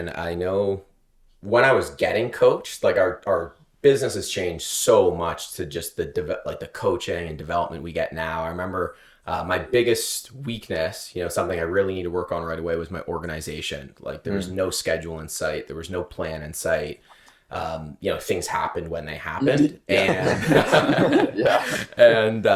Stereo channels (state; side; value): identical; both; correlation 1.00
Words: I know when I was getting coached, like our business has changed so much to just the coaching and development we get now. I remember my biggest weakness, something I really need to work on right away was my organization. Like there was no schedule in sight. There was no plan in sight. Things happened when they happened. And and